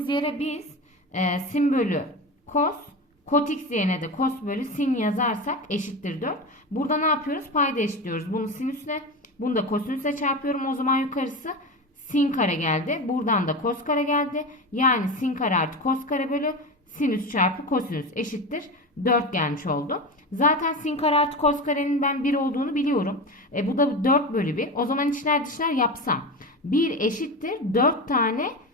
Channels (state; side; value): normal; both; correlation 0.24